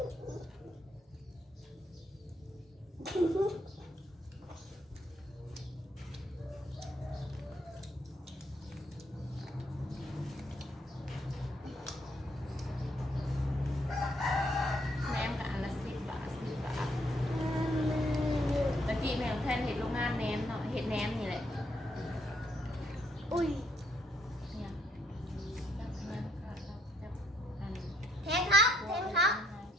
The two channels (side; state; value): both; normal; correlation 0.72